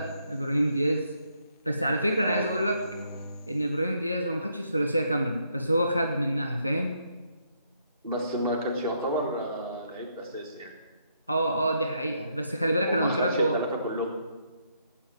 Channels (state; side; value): inverted; both; correlation -0.74